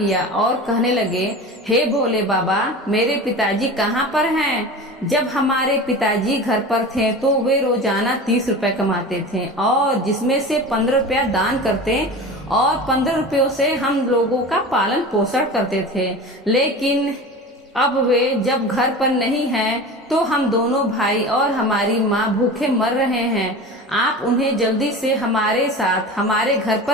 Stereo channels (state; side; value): normal; both; correlation 0.32